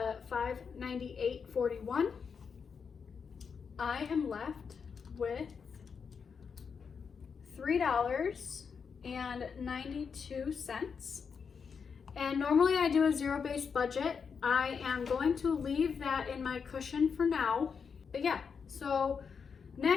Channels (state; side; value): quieter; right; 6.1 dB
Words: $598.41, I am left with $3.92. And normally I do a zero-based budget. I am going to leave that in my cushion for now. But yeah, so